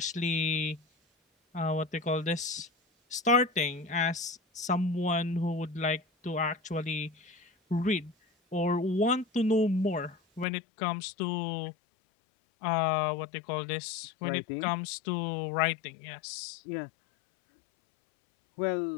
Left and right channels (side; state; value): right; drops out; at 10.5 s